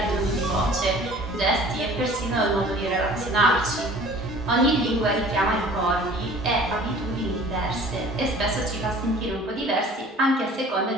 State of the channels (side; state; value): both; normal; correlation 0.48